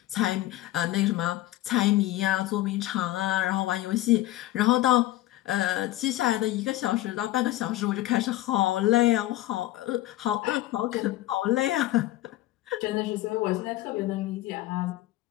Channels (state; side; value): quieter; right; 15.7 dB